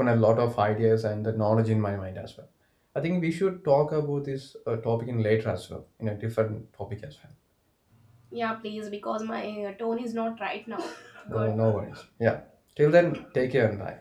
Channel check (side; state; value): both; identical; correlation 1.00